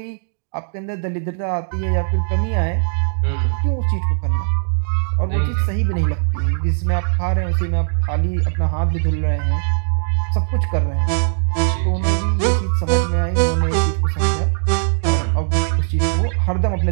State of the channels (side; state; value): left; silent; digital silence